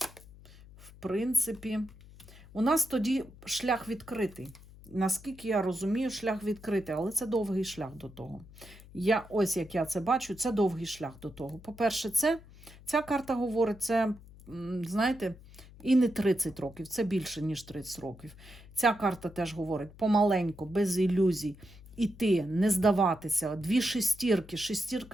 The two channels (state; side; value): noise; left; hum, 20 dB below the sound